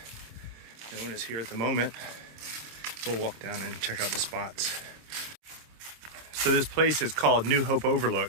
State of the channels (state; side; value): late; left; 26 ms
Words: no one is here at the moment. We'll walk down and check out the spots. So this place is called New Hope